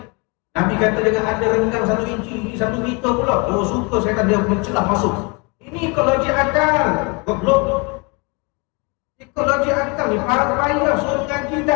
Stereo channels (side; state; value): right; quieter; 30.8 dB